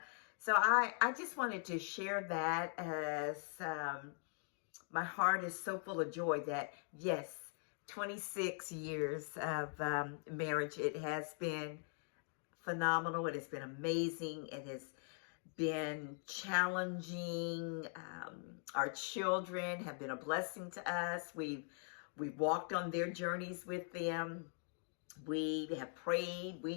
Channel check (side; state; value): right; silent; 50 dB below the other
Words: so I just wanted to share that as my heart is so full of joy that, yes, 26 years of marriage, it has been phenomenal. It has been amazing. It has been challenging. Our children have been a blessing to us. We've walked on their journeys with them. We have prayed.